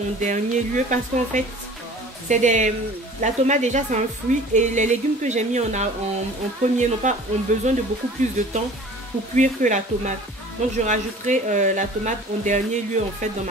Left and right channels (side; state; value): both; normal; correlation 0.45